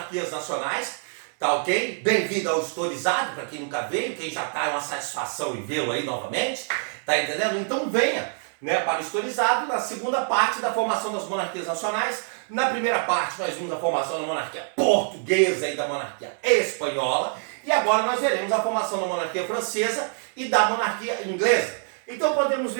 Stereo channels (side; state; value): left; silent; 61 dB below the other